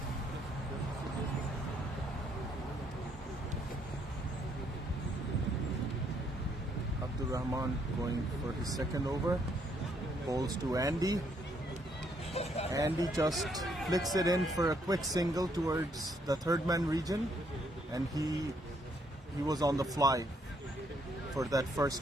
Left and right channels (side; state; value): both; normal; correlation 0.71